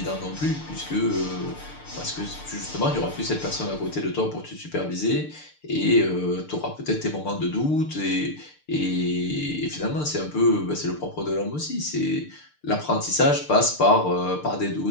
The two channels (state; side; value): late; right; 6.7 ms